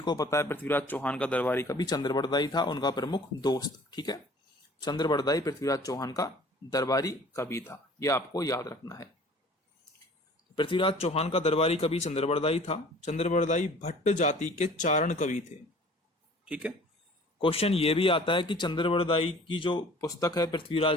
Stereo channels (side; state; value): both; normal; correlation 0.49